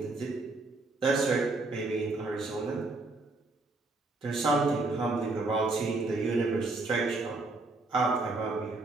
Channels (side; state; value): left; quieter; 3.3 dB